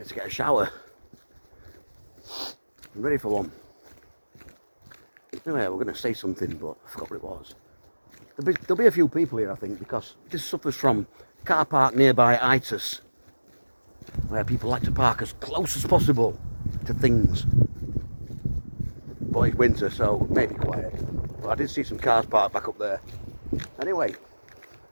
to get a shower. I'm ready for one. Anyway, we're going to say something, but I forgot what it was. There'll be a few people here, I think, because this suffers from car park nearby itis, where people like to park as close as possible to things. But it's winter, so it may be quiet. But I did see some cars parked back up there. Anyway,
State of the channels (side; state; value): both; inverted; correlation -1.00